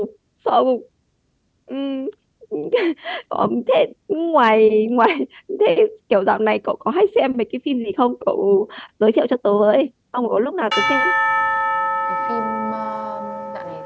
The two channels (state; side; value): identical; both; correlation 1.00